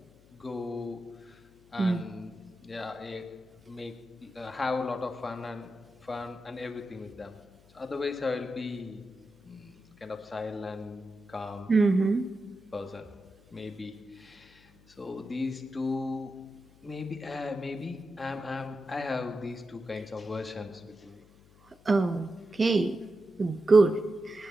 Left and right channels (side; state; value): left; noise; hum, 27 dB below the sound